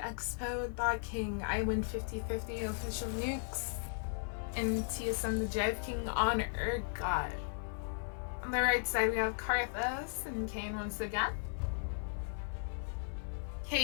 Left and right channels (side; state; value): right; silent; digital silence